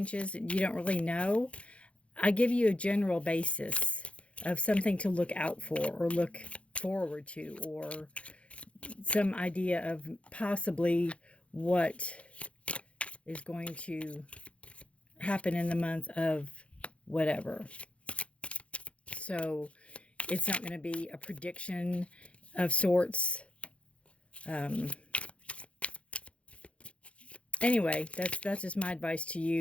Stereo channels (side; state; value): right; late; 0.061 ms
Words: you don't really know. I give you a general basis of something to look out for or look forward to, or some idea of possibly what is going to happen in the month of whatever. So it's not going to be a prediction of sorts. Anyway, that's just my advice to